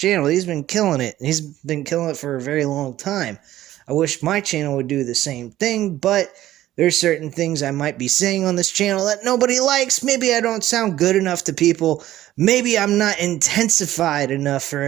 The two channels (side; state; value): left; quieter; 14.1 dB